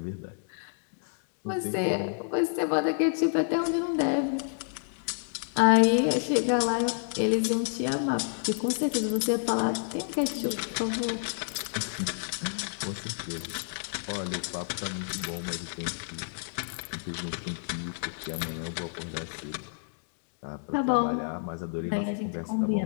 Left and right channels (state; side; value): silent; right; digital silence